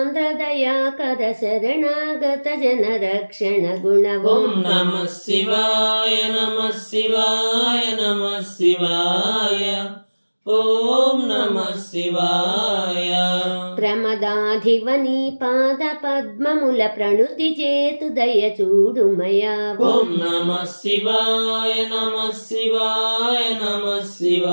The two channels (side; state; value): both; inverted; correlation -1.00